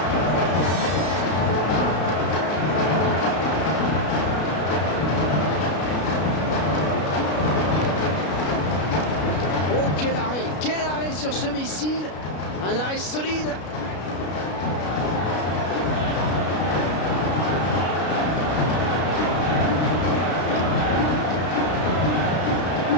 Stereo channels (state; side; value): late; right; 33 ms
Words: Oh, quel arrêt sur ce missile. Un arrêt solide.